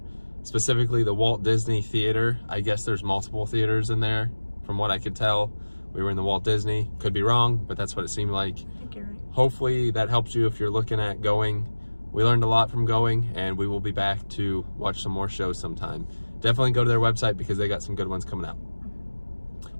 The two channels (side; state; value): both; inverted; correlation -1.00